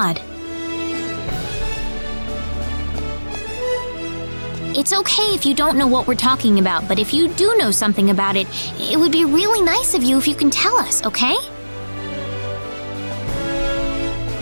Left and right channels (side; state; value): both; inverted; correlation -1.00